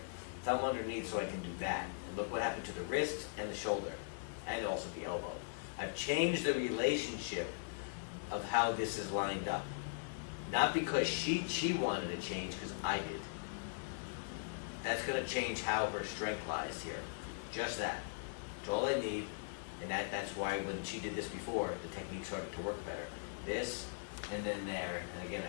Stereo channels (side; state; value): right; silent; digital silence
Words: Thumb underneath so I can do that. And look what happened to the wrist and the shoulder, and also the elbow. I've changed the relationship of how this is lined up. Not because she wanted to change, because I did. That's going to change how her strength lies here. Just that. That's all I need. And that's why when she did this before, the technique started to work better. This, and then there, and again